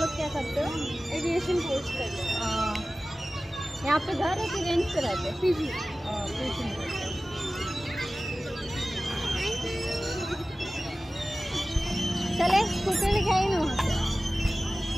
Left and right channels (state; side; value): normal; both; correlation 0.96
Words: क्या करते हो? एविएशन कोर्स करते हो। यहाँ पे घर है कि रेंट पे रहते हो? पीजी। चले स्कूटर लिखाई ना वहाँ पे।